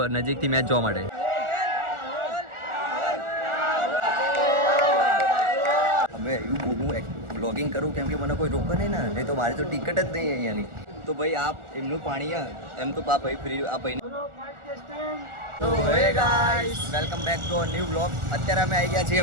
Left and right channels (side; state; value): left; late; 1.4 ms